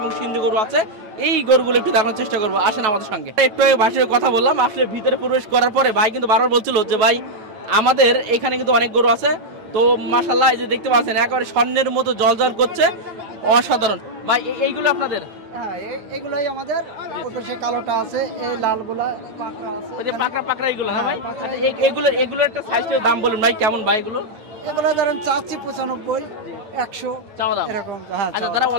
সিন্ধু গরু আছে, এই গরুগুলো একটু দেখানোর চেষ্টা করবো। আসেন আমাদের সঙ্গে। একটু ভাষায় কথা বললাম, আসলে ভিতরে প্রবেশ করার পরে ভাই কিন্তু বারবার বলছিল যে ভাই আমাদের এখানে কিন্তু অনেক গরু আছে। তো মাশাআল্লাহ, এই যে দেখতে পাচ্ছেন একেবারে স্বর্ণের মতো জলজল করছে, অসাধারণ। ভাই এইগুলো আপনাদের? হ্যাঁ, এগুলাই আমাদের। ওই সে কালোটা আছে, এই লালগুলা পাকড়া আছে। ওই যে পাকড়া পাকড়া এগুলো না ভাই? আচ্ছা, এগুলো একটা সাইজের দাম বলুন ভাই, কেমন ভাই এগুলো? এগুলো ধরেন চাচ্ছি 95, 100 চাওয়া দাম এরকম। হ্যাঁ, আচ্ছা, যারা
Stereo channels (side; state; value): left; late; 9.0 ms